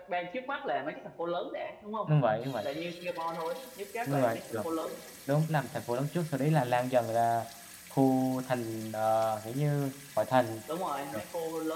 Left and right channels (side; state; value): both; identical; correlation 1.00